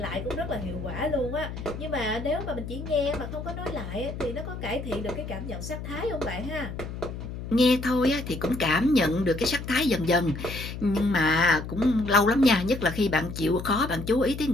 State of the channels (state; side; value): noise; left; hum, 8 dB below the sound